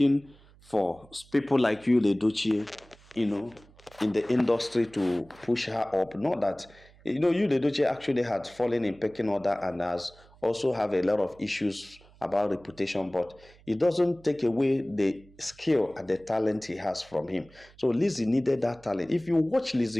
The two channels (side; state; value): right; noise; hum, 26 dB below the sound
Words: for people like you, Edochie, in the industry to push her up. Not that you, Edochie actually had fallen in pecking order and has also have a lot of issues about reputation, but it doesn't take away the skill and the talent he has from him. So Lizzy needed that talent. If you watch